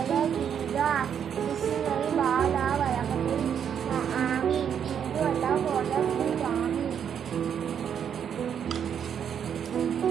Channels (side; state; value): left; quieter; 8.2 dB